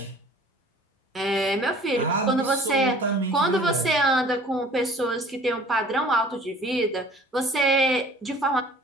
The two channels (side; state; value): both; normal; correlation 0.50